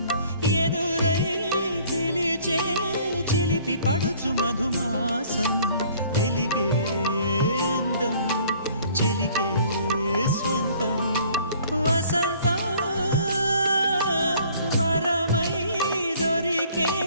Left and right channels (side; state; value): both; inverted; correlation -0.55